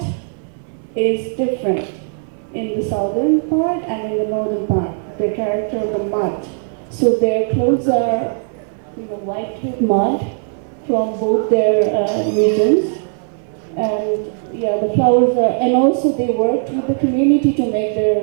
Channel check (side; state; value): left; silent; 60 dB below the other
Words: is different in the southern part and in the northern part, the character of the mud. So their clothes are wiped with mud from both their regions. And the flowers are, and also they worked with the community to make